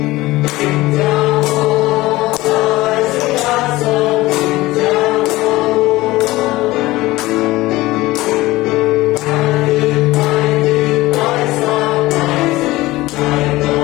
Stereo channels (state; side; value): quieter; right; 18.8 dB